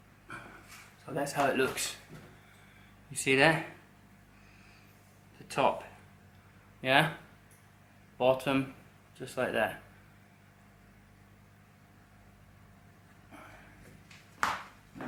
that's how it looks. You see that? The top. Yeah? Bottom, just like that.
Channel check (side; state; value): both; identical; correlation 1.00